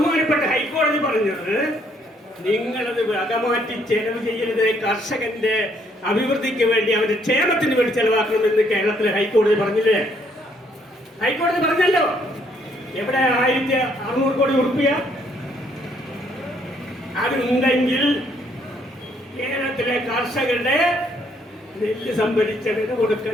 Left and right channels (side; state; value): both; normal; correlation 0.68